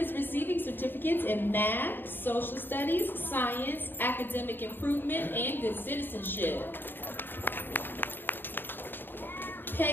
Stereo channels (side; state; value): right; late; 0.097 ms